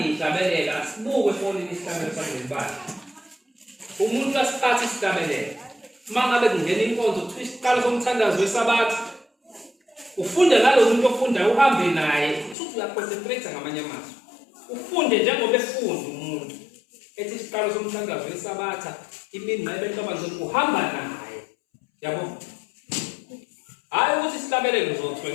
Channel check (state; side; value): drops out; right; at 12.6 s